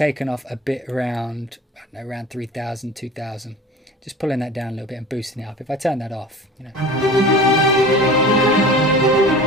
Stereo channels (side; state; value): both; normal; correlation 0.39